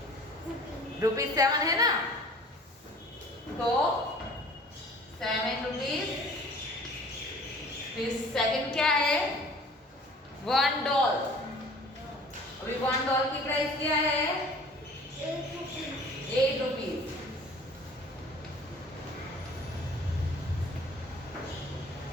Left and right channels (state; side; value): normal; both; correlation 0.48